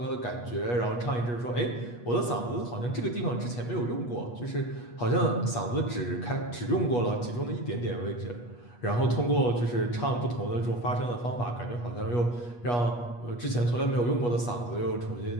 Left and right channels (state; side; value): late; right; 8.3 ms